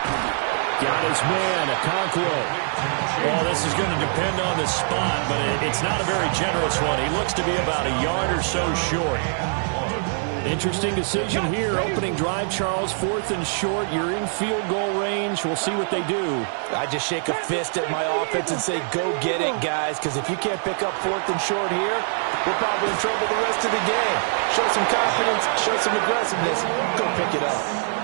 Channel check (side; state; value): left; silent; 56 dB below the other